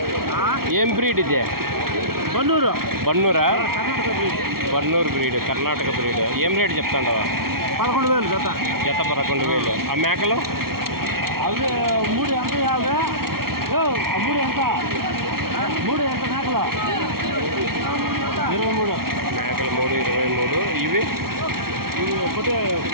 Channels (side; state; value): left; late; 0.94 ms